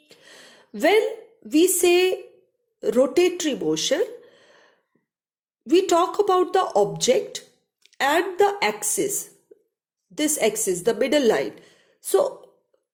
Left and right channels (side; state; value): both; identical; correlation 1.00